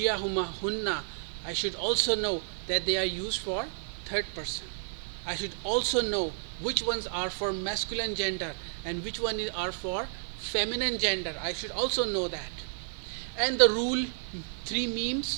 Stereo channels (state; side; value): silent; left; digital silence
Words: huma hunna, I should also know that they are used for third person. I should also know which ones are for masculine gender and which one are for feminine gender. I should also know that. And the rule, 3